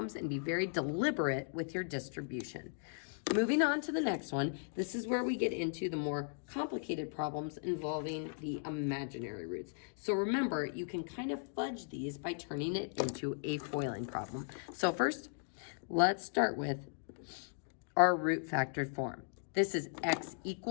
and be very deliberate with your distribution. Moving on to the next one, this is where we get into the more complicated problems involving the imaginary roots. So remember, you can kind of fudge these by turning it into a foiling problem. So first, let's start with our root factored form. This is x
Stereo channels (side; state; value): right; silent; digital silence